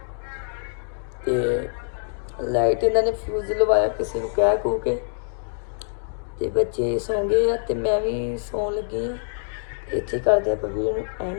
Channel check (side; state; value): right; silent; digital silence